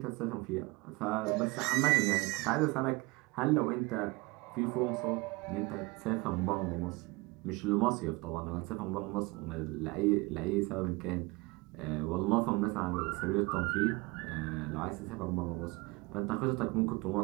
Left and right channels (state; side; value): quieter; left; 24.6 dB